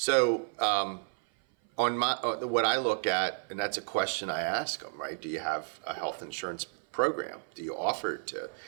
what I look at, and that's a question I ask them, right? Do you have a health insurance program? Do you offer it to?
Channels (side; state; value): left; silent; 56 dB below the other